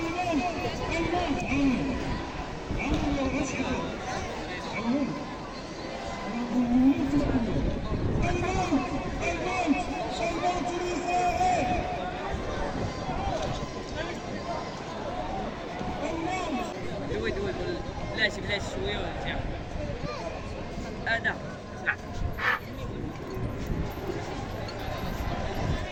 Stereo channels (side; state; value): both; identical; correlation 1.00